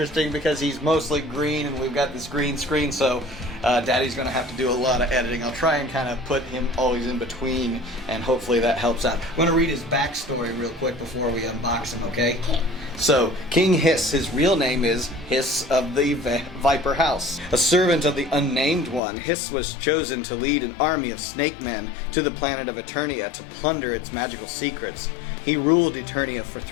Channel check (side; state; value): right; drops out; at 19.0 s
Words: because he's mostly green and we've got this green screen, so Daddy's going to have to do a lot of editing. I'll try and kind of put him always in between, and hopefully that helps out. I'm going to read his backstory real quick before we unbox him, okay? Okay. So, King Hssss, his real name is Hssss of the Viper House. A servant of the Unnamed One, Hssss was chosen to lead an army of snake men to the planet of Eternia to plunder its magical secrets. He ruled Eternia for